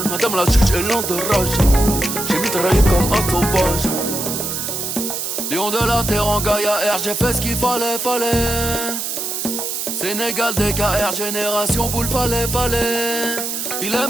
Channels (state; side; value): noise; right; hiss, 3 dB below the sound